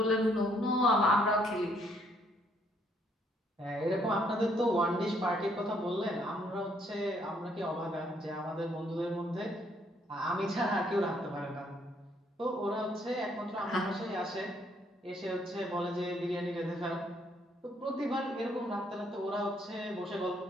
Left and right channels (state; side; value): normal; both; correlation 0.68